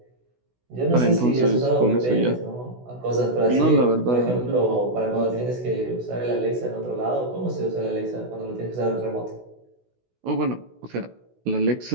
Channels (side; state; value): left; late; 16 ms